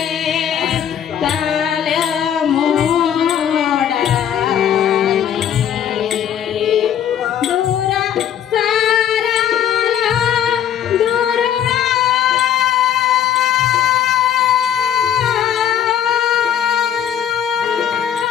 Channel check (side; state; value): right; quieter; 9.6 dB